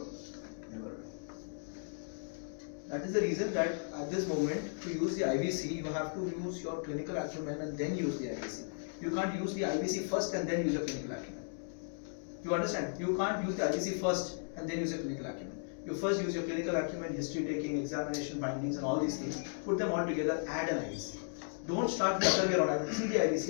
never do. That is the reason that at this moment, to use the IVC, you have to use your clinical acumen and then use the IVC. You can't use the IVC first and then use your clinical acumen. You understand? You can't use the IVC first and then use your clinical acumen. You first use your clinical acumen, history taking, examination findings, and all these things. Put them all together, add an IVC. Don't start the other way around. I will see the IVC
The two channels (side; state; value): right; silent; digital silence